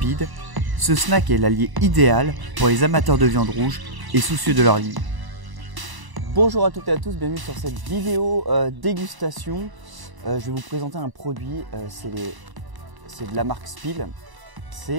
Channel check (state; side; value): late; left; 1.0 ms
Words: ce snack est l'allié idéal pour les amateurs de viande rouge et soucieux de leur ligne. Bonjour à toutes et à tous, bienvenue sur cette vidéo dégustation. Je vais vous présenter un produit, c'est de la marque Spill.